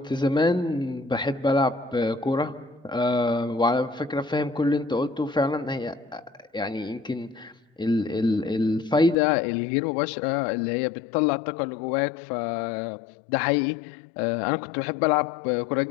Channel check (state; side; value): drops out; right; at 9.2 s